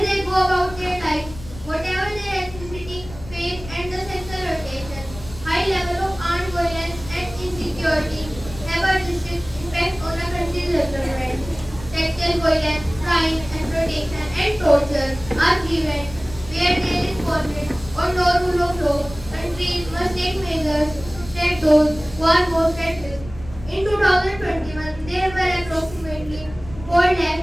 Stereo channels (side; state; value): left; noise; rumble, 15 dB below the sound